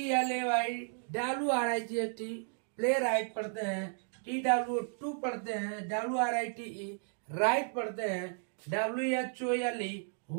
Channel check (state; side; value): silent; left; 55 dB below the other